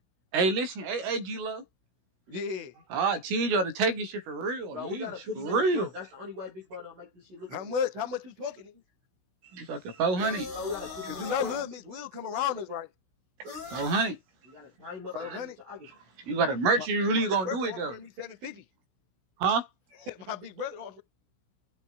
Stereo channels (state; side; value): late; left; 16 ms